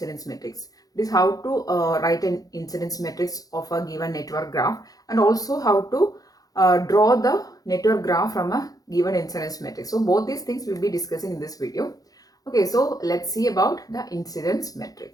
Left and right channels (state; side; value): late; right; 0.18 ms